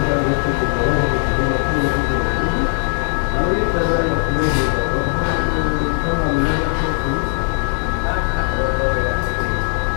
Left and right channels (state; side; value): silent; right; digital silence